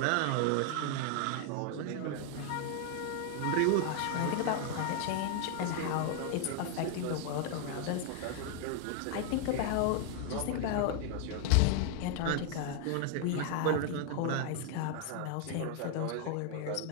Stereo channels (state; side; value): different; both; correlation 0.00